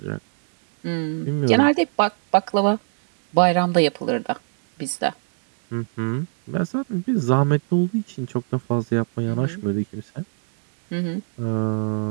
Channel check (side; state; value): left; silent; 63 dB below the other